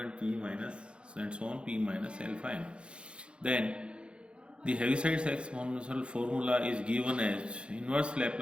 P minus and so on, P minus alpha n. Then the heavisides exponential formula is given as inverse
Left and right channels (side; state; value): left; late; 0.057 ms